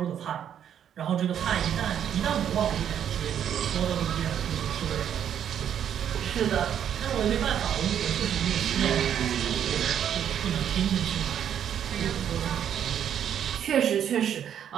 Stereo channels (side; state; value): left; quieter; 9.3 dB